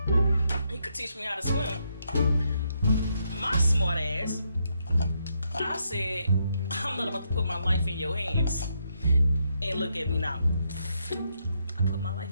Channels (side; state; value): both; inverted; correlation -0.78